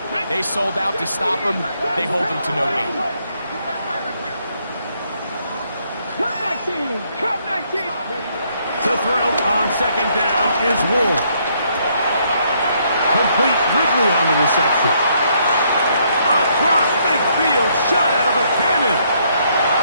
They sold out to stop him. They hold him to no gain. Cup 19. To throw on second down is Ward. Complete Ridley on the reception. Across midfield, shot out of a cannon.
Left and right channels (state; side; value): inverted; both; correlation -0.71